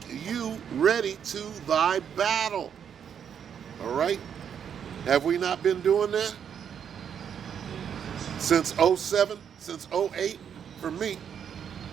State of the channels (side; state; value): left; quieter; 8.1 dB